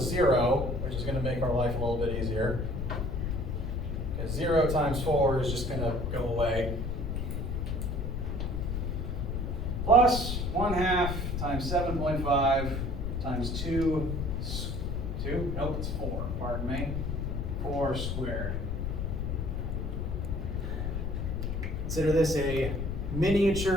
0, which is going to make our life a little bit easier. Because 0 times 4 is just going to go away. Plus 1/2 times 7.5 times 2, nope, it's 4, pardon me, 4 squared. Consider this a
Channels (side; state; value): left; noise; rumble, 2 dB below the sound